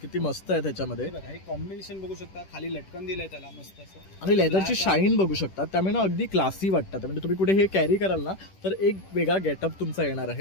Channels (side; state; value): right; late; 10 ms